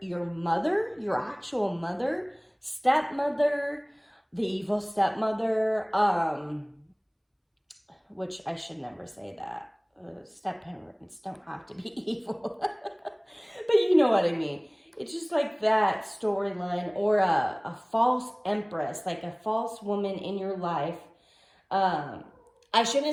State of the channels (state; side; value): identical; both; correlation 1.00